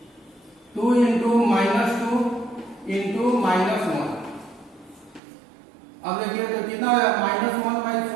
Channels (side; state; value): left; drops out; at 5.2 s